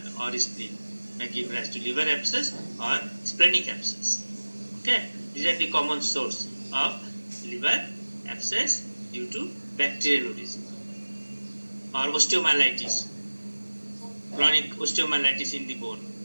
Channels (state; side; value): inverted; both; correlation -1.00